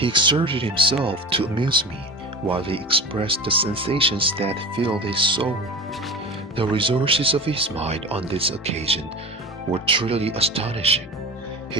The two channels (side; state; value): both; normal; correlation 0.31